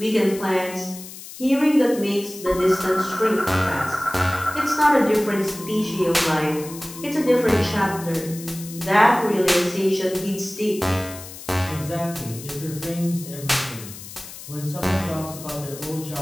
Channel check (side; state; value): left; noise; hiss, 14 dB below the sound